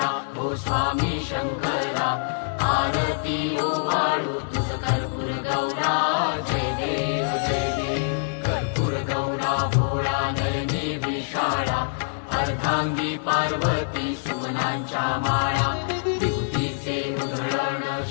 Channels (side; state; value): right; silent; digital silence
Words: ओ स्वामी शंकरा आरती ओवाळू तुझ कर्पूर गौरा जय देव कर्पूर गौरा भोळा नयनी विशाळा अर्धांगी पार्वती सुमनांच्या माळा विभूतीचे उधळण